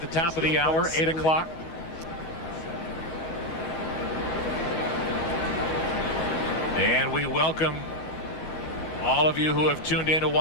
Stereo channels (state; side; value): late; right; 12 ms